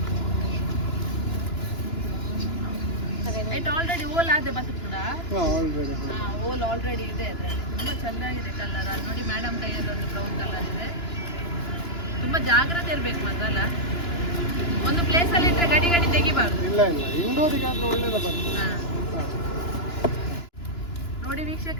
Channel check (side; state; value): right; late; 2.9 ms